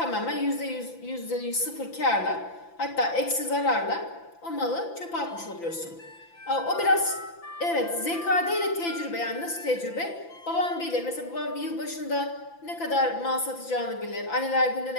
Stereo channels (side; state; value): right; late; 5.9 ms